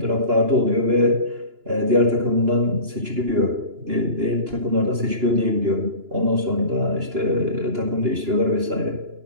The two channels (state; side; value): late; left; 2.9 ms